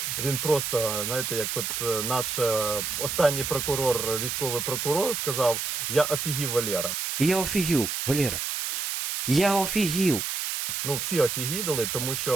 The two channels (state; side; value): noise; right; hiss, 2 dB below the sound